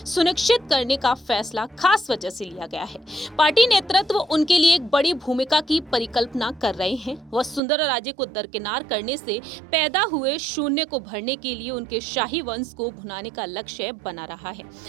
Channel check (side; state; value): left; drops out; at 7.6 s